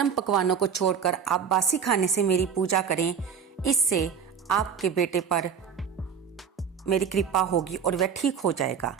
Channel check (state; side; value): quieter; left; 7.1 dB